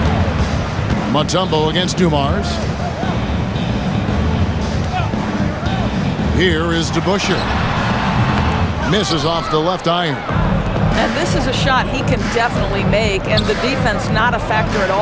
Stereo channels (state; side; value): identical; both; correlation 1.00